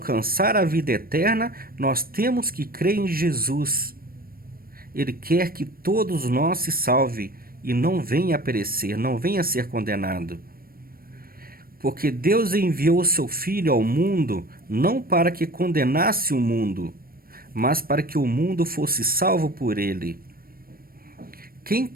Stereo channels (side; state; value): left; late; 0.43 ms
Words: a vida eterna, nós temos que crer em Jesus. Ele quer que todos nós se salvem e não venha a perecer, não venha a ser condenado. Porque Deus enviou o seu Filho ao mundo não para que condenasse o mundo, mas para que o mundo fosse salvo por ele. Quem